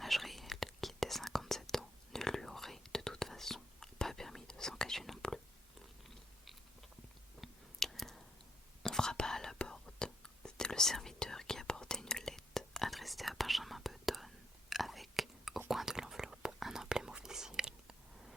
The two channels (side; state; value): both; normal; correlation 0.76